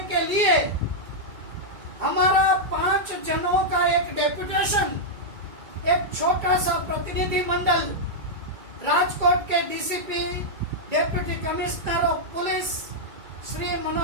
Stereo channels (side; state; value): left; late; 2.3 ms